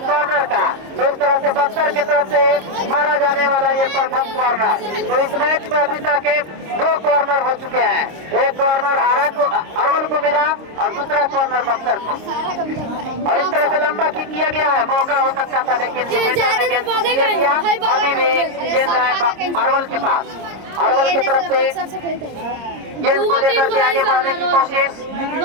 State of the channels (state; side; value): late; left; 26 ms